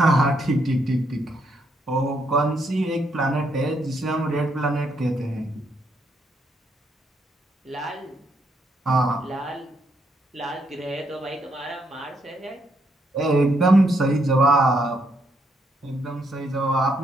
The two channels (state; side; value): normal; both; correlation 0.75